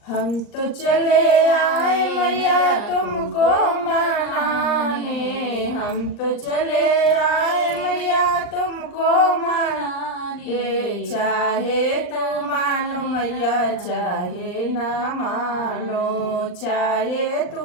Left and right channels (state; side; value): late; right; 39 ms